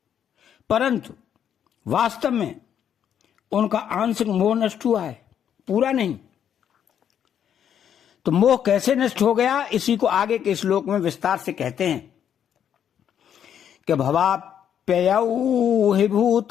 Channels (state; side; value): quieter; right; 9.1 dB